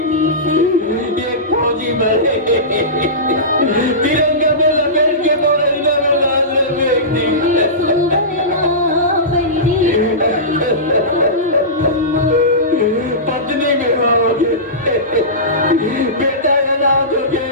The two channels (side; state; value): both; normal; correlation -0.20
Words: एक फौजी मरे तिरंगा में लपेट के बोरंगा में डाल फेंक दी, पत्नी में होगे बेटा का नाम होगे,